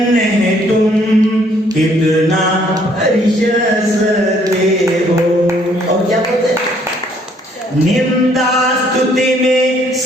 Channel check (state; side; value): normal; both; correlation 0.64